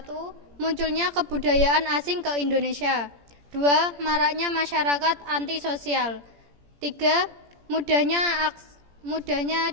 Munculnya kebudayaan asing ke Indonesia. 2. Maraknya masyarakat antisosial. 3. Mudahnya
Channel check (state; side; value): late; left; 17 ms